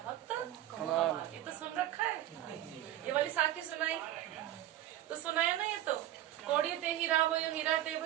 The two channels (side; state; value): left; quieter; 13.1 dB